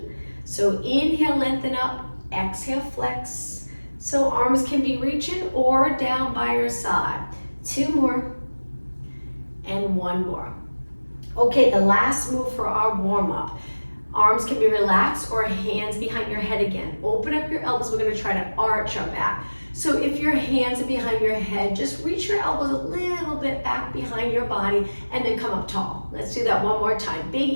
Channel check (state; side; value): inverted; both; correlation -1.00